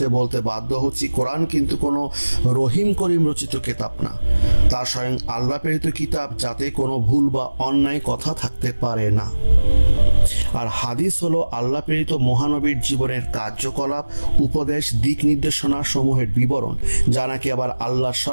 বলতে বাধ্য হচ্ছি, কোরআন কিন্তু কোনো রহিম করিম রচিত কিতাব না। তা স্বয়ং আল্লাহ প্রেরিত কিতাব, যাতে কোনো ভুল বা অন্যায় কথা থাকতে পারে না। আর হাদিস হলো আল্লাহ প্রেরিত মহানবীর জীবনের কার্যকলাপ, উপদেশ, দিক নির্দেশনা সমূহের বিবরণ, যা নাকি আবার আল্লাহর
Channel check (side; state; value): both; inverted; correlation -1.00